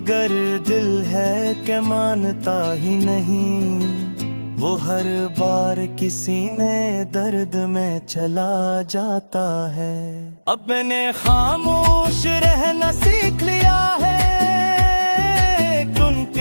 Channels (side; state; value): both; inverted; correlation -1.00